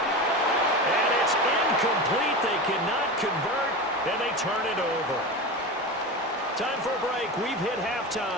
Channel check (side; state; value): both; normal; correlation 0.25